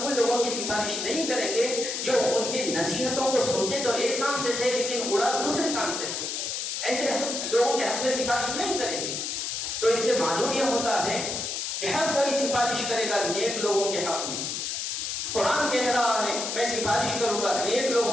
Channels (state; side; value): noise; left; hiss, 3 dB below the sound